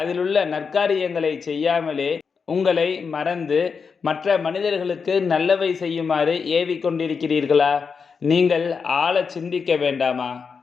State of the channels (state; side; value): quieter; right; 5.6 dB